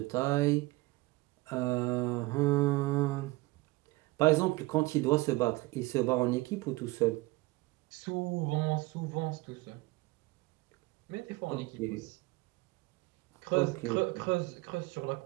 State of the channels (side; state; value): left; quieter; 21.7 dB